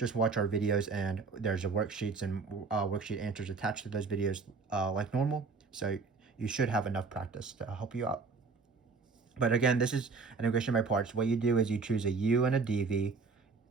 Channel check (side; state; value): left; quieter; 4.6 dB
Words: watch our videos, and there's worksheets and worksheet answers attached to those videos like normal. So you should have enough practice to help you out. But again, this is integration by parts. What you do is you choose a u and a dv.